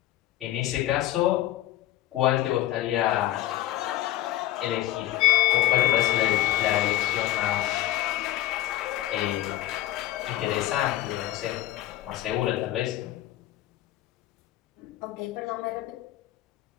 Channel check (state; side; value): quieter; right; 14.3 dB